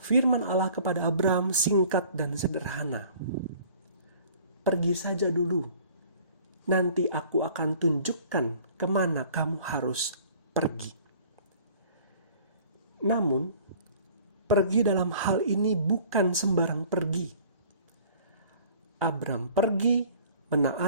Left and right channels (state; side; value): inverted; both; correlation -0.51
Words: Firman Allah kepada Abram singkat dan sederhana. "Pergi saja dulu, nanti aku akan tunjukkan kemana kamu harus pergi. Namun, pergi dalam hal ini bukan sembarang pergi. Abram pergi